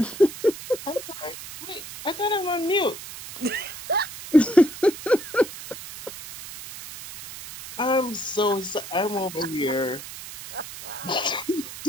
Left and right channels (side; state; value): right; noise; hiss, 12 dB below the sound